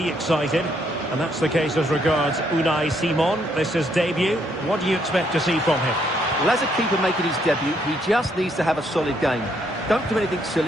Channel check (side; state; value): both; normal; correlation 0.72